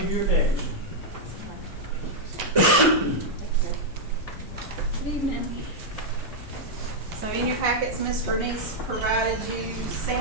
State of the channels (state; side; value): normal; both; correlation -0.03